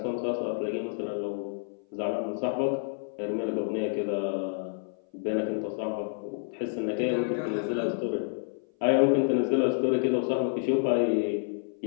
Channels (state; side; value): silent; right; 57 dB below the other